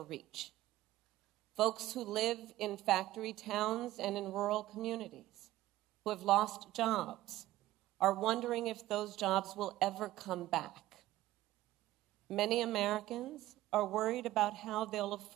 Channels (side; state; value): left; quieter; 15.6 dB